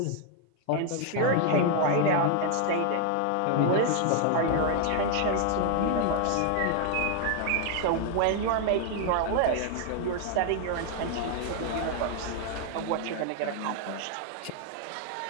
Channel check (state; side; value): different; both; correlation 0.00